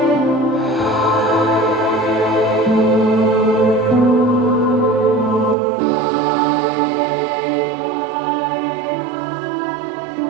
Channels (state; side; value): drops out; left; at 5.6 s